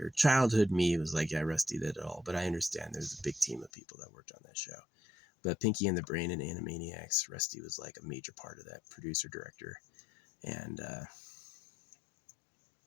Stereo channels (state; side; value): drops out; right; at 3.7 s